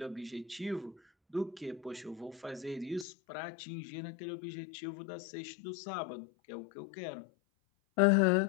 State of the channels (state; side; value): drops out; right; at 3.1 s